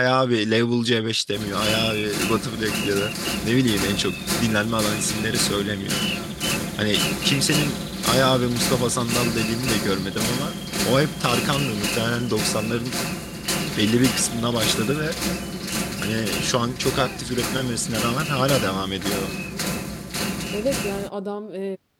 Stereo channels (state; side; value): identical; both; correlation 1.00